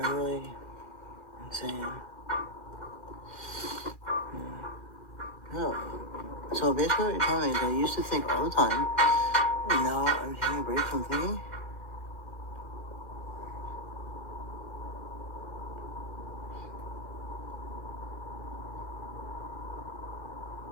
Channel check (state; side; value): late; right; 2.4 ms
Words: are really insane. No. So basically what you're telling me is I used to think all the time, and now I'm taking a break from thinking.